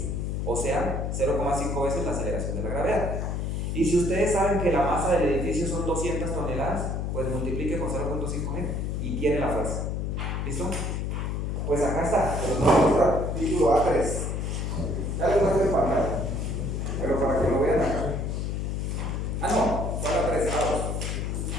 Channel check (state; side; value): noise; left; hum, 1 dB below the sound